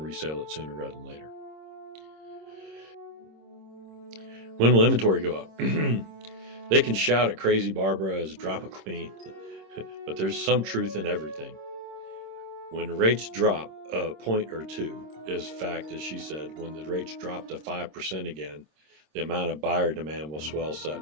it sooner rather than later. When will inventory go up? They can shout at Crazy Barbara as a drama queen, but there's some truth in everything. When rates drop a point or two, is fact, as she said, when the rates drop to 5% again, the amount of buyer demand will swell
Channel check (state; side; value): late; left; 26 ms